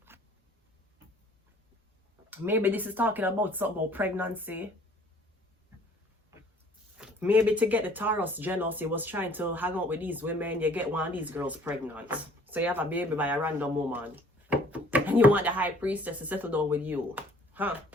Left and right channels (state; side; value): normal; both; correlation 0.55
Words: Maybe this is talking about something about pregnancy. Maybe to get the Taurus jealous, you was trying to hang out with these women. You get one of these girls pregnant. So you have a baby by a random woman. And you want the high priestess to settle down with you. Huh?